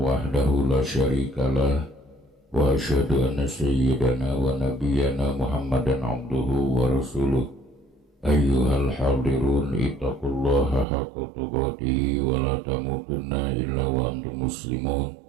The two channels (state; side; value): drops out; left; at 10.9 s